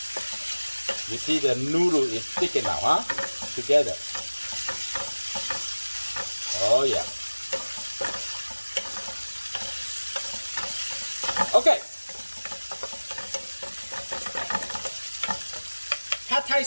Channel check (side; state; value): both; inverted; correlation -1.00